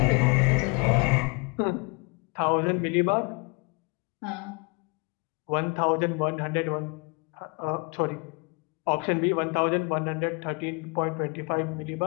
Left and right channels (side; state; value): right; quieter; 30.9 dB